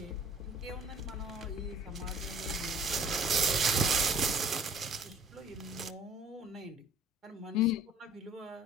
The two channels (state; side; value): normal; both; correlation 0.51